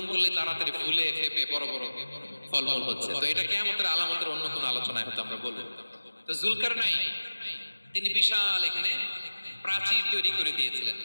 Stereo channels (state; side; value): inverted; both; correlation -1.00